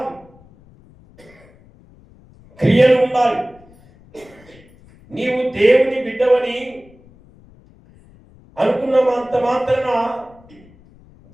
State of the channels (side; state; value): left; noise; rumble, 26 dB below the sound